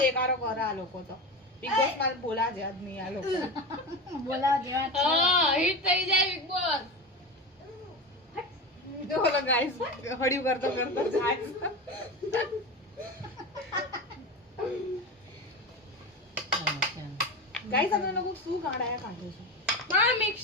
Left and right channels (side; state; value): both; normal; correlation 0.24